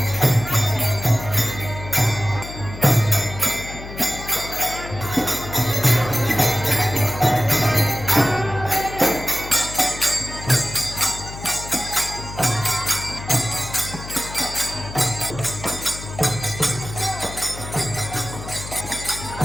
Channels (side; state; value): left; noise; hum, 11 dB below the sound